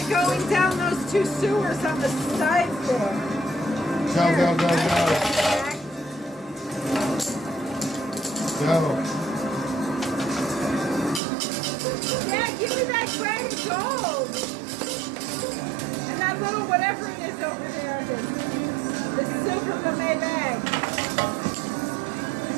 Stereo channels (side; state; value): left; drops out; at 11.2 s